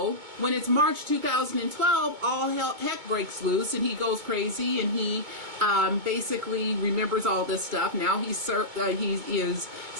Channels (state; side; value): late; left; 2.2 ms